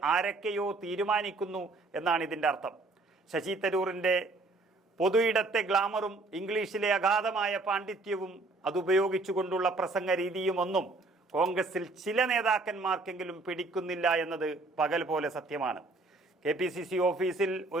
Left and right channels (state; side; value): quieter; left; 3.2 dB